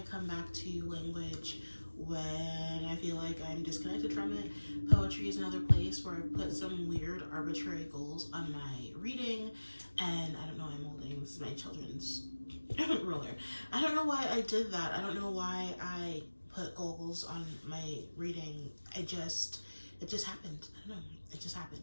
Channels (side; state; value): both; inverted; correlation -1.00